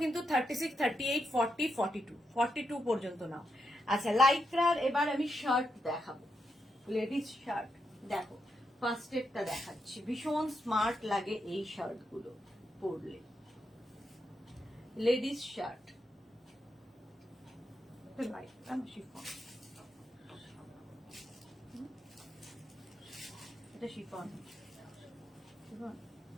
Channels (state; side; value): normal; both; correlation 0.83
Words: কিন্তু 36, 38, 40, 42, 42 পর্যন্ত নাও। আচ্ছা, লাইক্রার এবার আমি শার্ট দেখাবো, লেডিস শার্ট। দেখো ফার্স্টেরটা দেখাচ্ছি, ভীষণ স্মার্ট লাগে এই শার্ট গুলো পরলে, লেডিস শার্ট, শিফন, এটা শিফন,